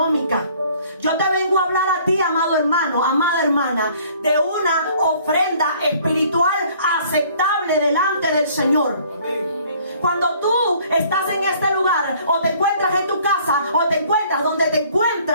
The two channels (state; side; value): inverted; both; correlation -0.57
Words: Yo te vengo a hablar a ti, amado hermano, amada hermana, de una ofrenda espiritual aceptable delante del Señor. Amén. cuando tú estás en este lugar, o te encuentras en tu casa, o te encuentras donde te